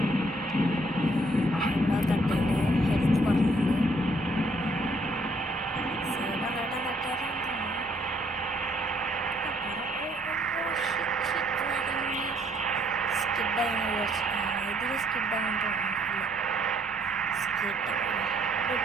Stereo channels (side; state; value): both; normal; correlation 0.66